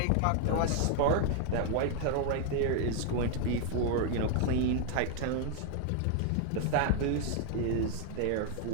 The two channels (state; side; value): different; both; correlation 0.00